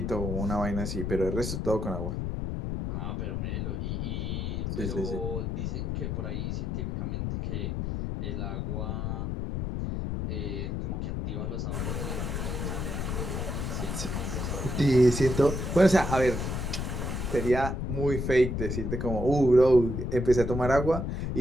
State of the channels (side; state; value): left; noise; rumble, 2 dB below the sound